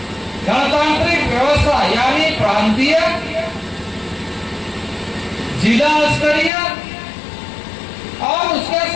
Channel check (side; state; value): right; drops out; at 6.5 s